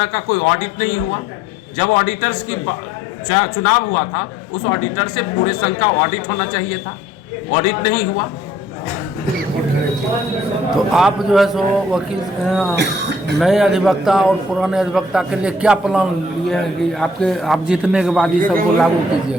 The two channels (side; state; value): both; normal; correlation 0.60